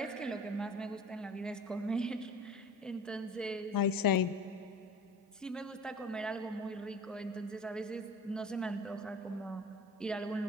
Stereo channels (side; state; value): both; normal; correlation 0.41